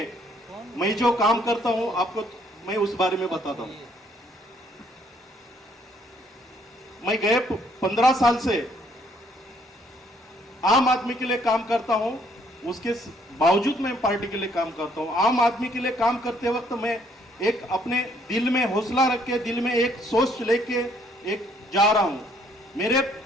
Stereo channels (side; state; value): both; normal; correlation 0.66